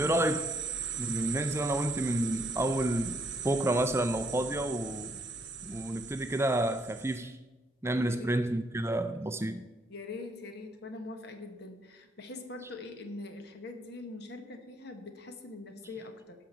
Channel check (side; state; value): both; normal; correlation 0.70